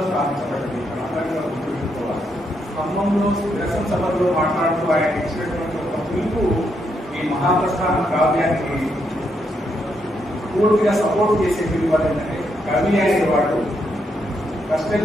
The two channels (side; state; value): both; normal; correlation 0.78